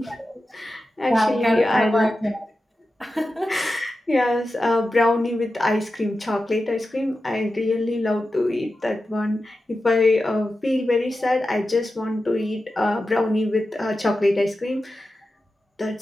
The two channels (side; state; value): both; normal; correlation 0.92